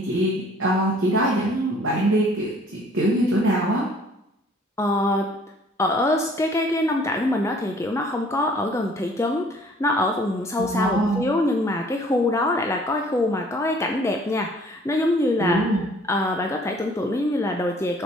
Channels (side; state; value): both; normal; correlation 0.56